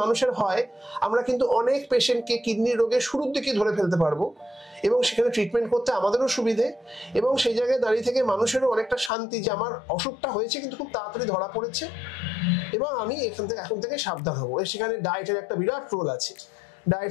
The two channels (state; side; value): drops out; right; at 9.1 s